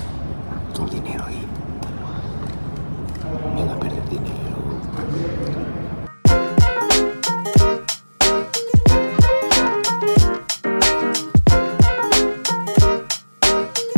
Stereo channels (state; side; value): inverted; both; correlation -1.00